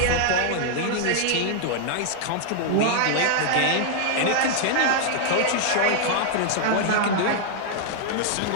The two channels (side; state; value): both; different; correlation -0.01